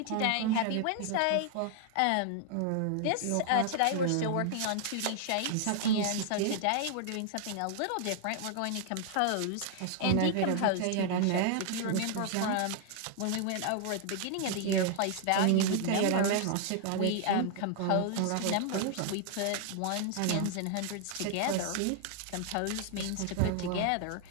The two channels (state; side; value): different; both; correlation 0.00